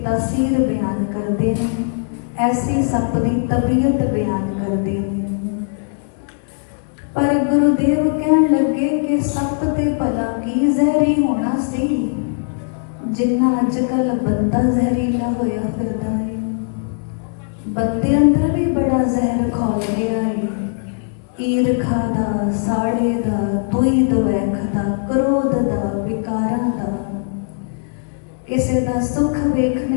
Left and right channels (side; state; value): right; silent; 66 dB below the other